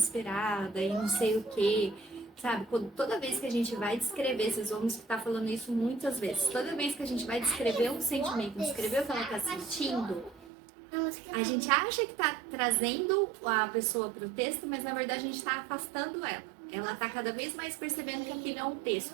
e não sei o que, sabe? Toda vez que a gente vai descrever, vocês vão estar falando isso muitas vezes, toda vez que a gente vai descrever um sentimento, descrever o que ela está sentindo, a gente acha que está trazendo a pessoa para o texto, mas na verdade a gente está afastando ela. Ela está cada vez mais percebendo que aquilo é um texto,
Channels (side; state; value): left; drops out; at 10.5 s